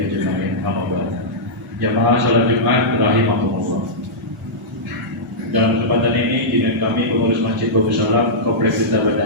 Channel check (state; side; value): normal; both; correlation -0.12